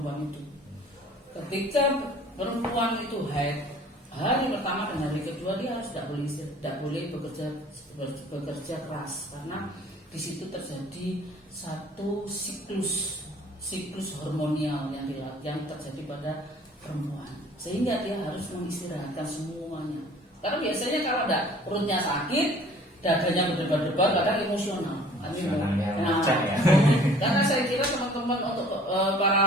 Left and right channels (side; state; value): both; normal; correlation 0.51